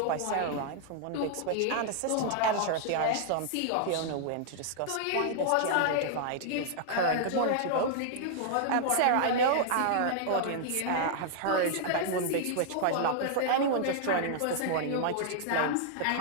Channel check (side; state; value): both; different; correlation -0.01